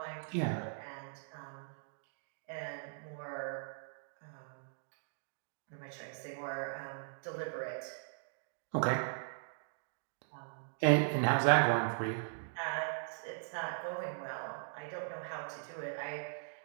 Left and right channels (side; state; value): left; silent; digital silence